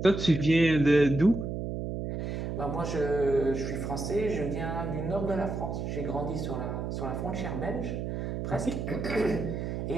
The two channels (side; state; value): right; noise; hum, 4 dB below the sound